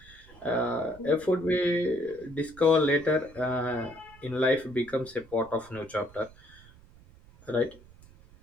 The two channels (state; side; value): noise; right; rumble, 23 dB below the sound